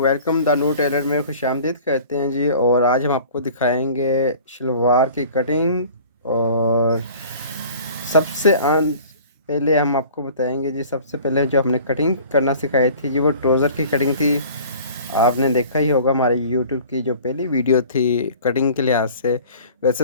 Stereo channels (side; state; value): both; inverted; correlation -0.46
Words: Welcome the new Taylor में खुशामदीद करते हैं जी। और आज हम आपको दिखाएंगे शलवार की कटिंग। और सबसे पहले हम आपको बताएंगे जी। सबसे पहले जो हमने कटिंग करना सिखाई थी जी, वो ट्राउज़र की कटिंग थी। आपने देखा ही होगा हमारे यूट्यूब की जो पहली वीडियो थी कटिंग के लिहाज से।